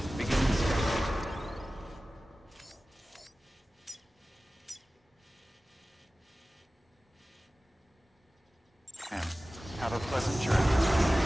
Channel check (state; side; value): normal; both; correlation 0.97